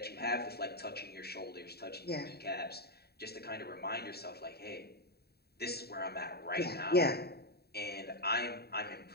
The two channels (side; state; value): right; late; 0.47 ms